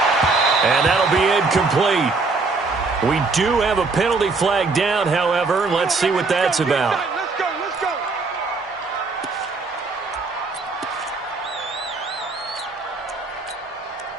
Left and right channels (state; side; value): quieter; left; 4.0 dB